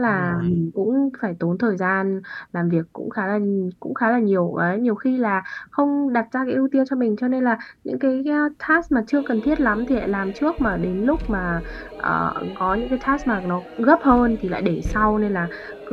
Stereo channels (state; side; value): identical; both; correlation 1.00